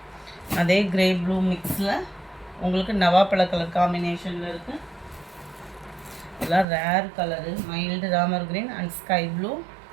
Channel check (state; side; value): drops out; left; at 6.7 s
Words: அதே க்ரே ப்ளூ மிக்ஸில் உங்களுக்கு நவாப்பழ கலர் காம்பினேஷனில் இருக்குது. இதெல்லாம் ரேர் கலரு. மைல்டு ராமர் green and sky blue.